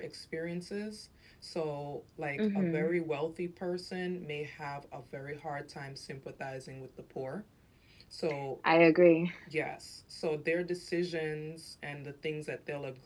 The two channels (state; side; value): identical; both; correlation 1.00